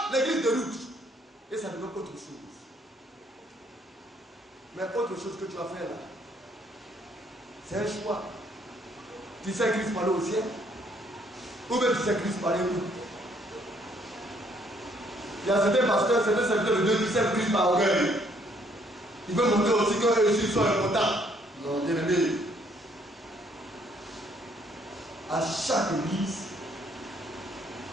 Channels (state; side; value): normal; both; correlation 0.66